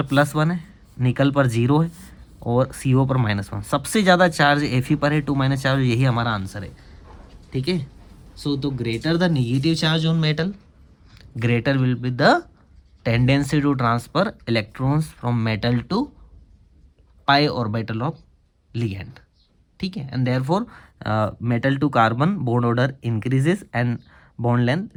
+1 है, निकल पर 0 है, और CO पर -1। सबसे ज़्यादा चार्ज Fe पर है, 2- चार्ज, यही हमारा आंसर है। ठीक है, सो तो greater the negative charge on metal, greater will be the tendency to transfer electrons from metal to pi orbital of ligand. ठीक है, and therefore metal to carbon bond order increases and bond length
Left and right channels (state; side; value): identical; both; correlation 1.00